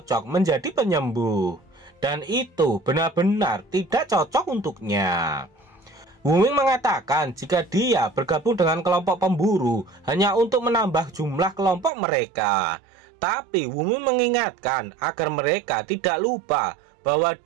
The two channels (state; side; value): drops out; left; at 11.9 s